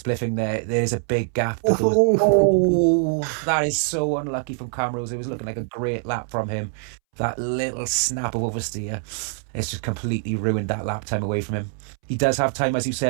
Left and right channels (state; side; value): silent; left; 63 dB below the other